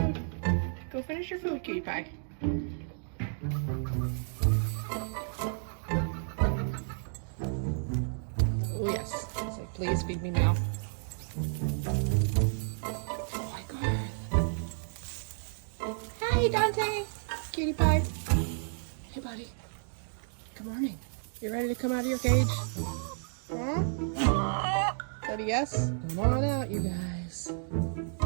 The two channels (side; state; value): left; silent; digital silence